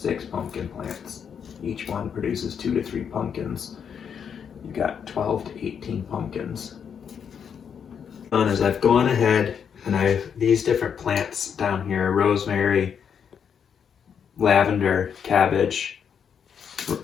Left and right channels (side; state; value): right; quieter; 7.4 dB